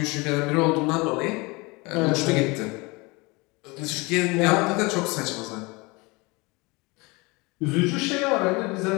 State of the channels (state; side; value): quieter; right; 25.6 dB